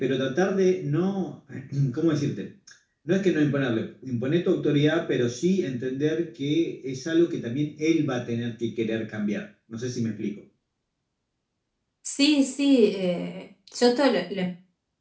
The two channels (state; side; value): identical; both; correlation 1.00